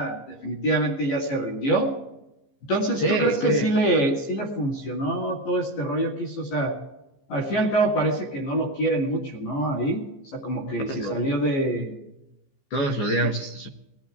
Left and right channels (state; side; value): late; right; 15 ms